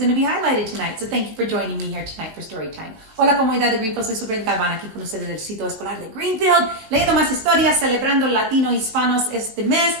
to be highlighted tonight. So thank you for joining me here tonight for story time. Hola comunidad de Greenfield, soy Superintendent Galvan aquí con ustedes del sitio escolar de Greenfield, leyendo más historias, celebrando latino hispanos este mes.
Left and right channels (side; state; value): left; late; 18 ms